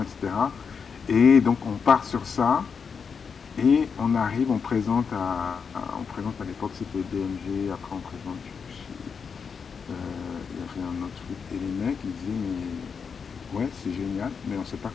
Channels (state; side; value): quieter; right; 6.0 dB